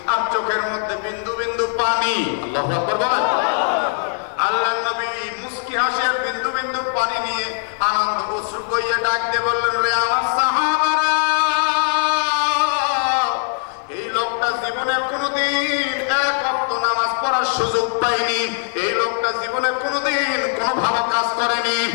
আর চোখের মধ্যে বিন্দু বিন্দু পানি। আল্লাহু আকবার বলেন। আল্লাহর নবী মুস্কি হাসি আর বিন্দু বিন্দু পানি নিয়ে আনন্দ অশ্রু বইয়ে ডাক দিয়ে বললেন, রে আমার সাহাবারা, এই লোকটা জীবনে কোনোদিন এক ওয়াক্ত নামাজ পড়ার সুযোগ পায়নি, এই লোকটা জীবনে কোনোদিন কোনো ভালো কাজ করেনি,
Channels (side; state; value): right; silent; 65 dB below the other